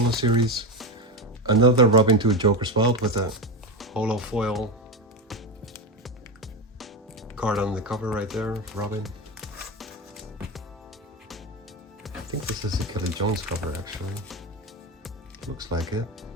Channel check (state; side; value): normal; both; correlation 0.17